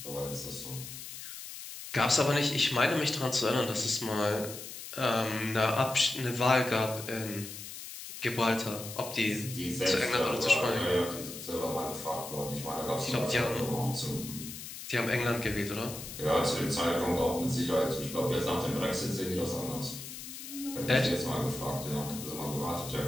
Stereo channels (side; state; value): left; noise; hiss, 11 dB below the sound